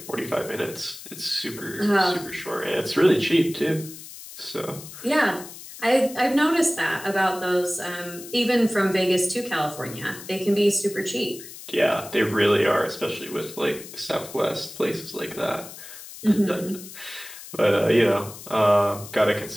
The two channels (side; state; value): left; noise; hiss, 14 dB below the sound